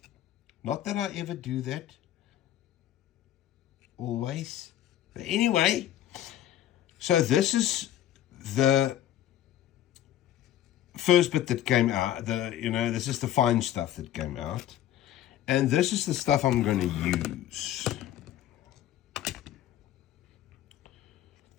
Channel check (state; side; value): quieter; right; 12.0 dB